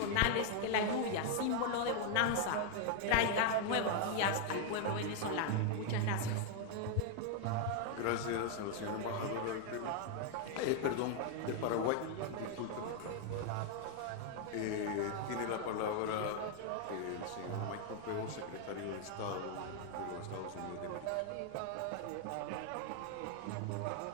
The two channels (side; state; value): both; different; correlation 0.00